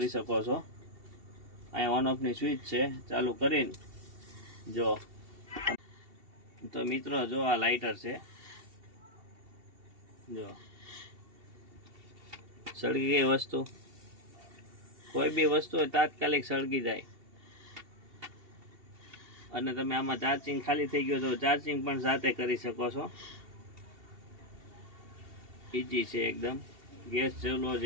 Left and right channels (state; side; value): late; left; 2.7 ms